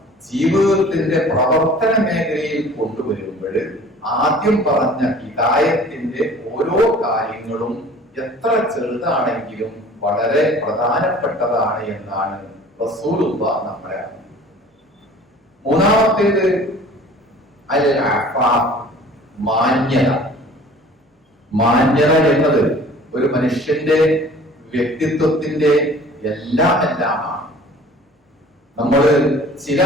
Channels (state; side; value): normal; both; correlation 0.48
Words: ജീവിതത്തിന്റെ പ്രവർത്തന മേഖലയിൽ കൊണ്ടുവരുമ്പോൾ ആദ്യം പറഞ്ഞ ഹിദായത്തിന്റെ ഓരോ കാര്യങ്ങളും എത്ര ചെറുതാണെങ്കിലും വളരെ പ്രധാനപ്പെട്ടതാണ് എന്നാണ് റസൂലുള്ളാഹ് നമ്മളെ അറിയിക്കുന്നത്. മൂന്നാമത്തേത് അൽ അഫാഫ്, മാന്യത. മാന്യത എന്നത് ഒരു മനുഷ്യന്റെ വ്യക്തിത്വത്തിന്റെ എല്ലാമാണ്. നമ്മൾ ചില